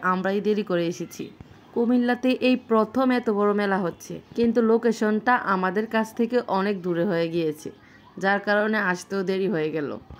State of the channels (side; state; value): both; identical; correlation 1.00